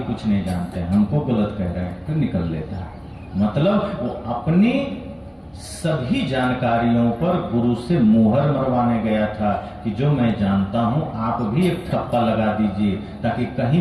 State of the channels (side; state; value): both; identical; correlation 1.00